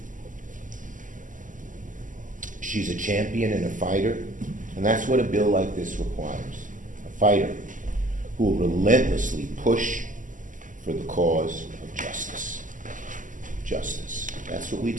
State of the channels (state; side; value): late; left; 0.38 ms